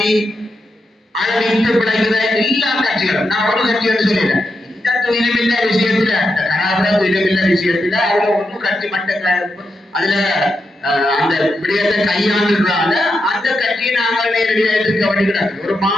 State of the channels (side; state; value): both; normal; correlation 0.86